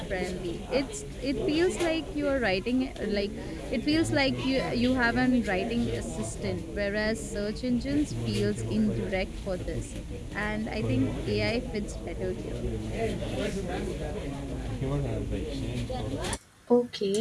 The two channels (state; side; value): identical; both; correlation 1.00